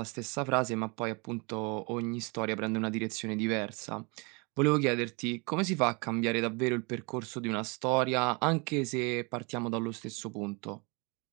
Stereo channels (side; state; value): left; quieter; 30.4 dB